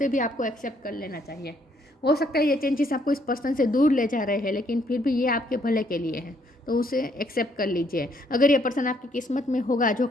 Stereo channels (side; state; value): both; normal; correlation 0.69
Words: भी आपको एक्सेप्ट कर लेना चाहिए। हो सकता है ये चेंजेस आपको इस पर्सन से दूर ले जा रहे हैं, लेकिन फिर भी ये आपके भले के लिए है, तो उसे एक्सेप्ट कर लीजिए। अगर ये पर्सन आपकी किस्मत में होगा, जो